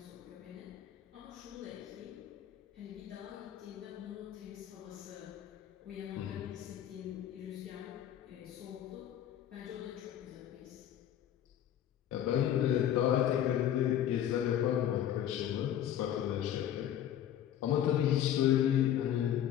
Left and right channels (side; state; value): right; quieter; 10.8 dB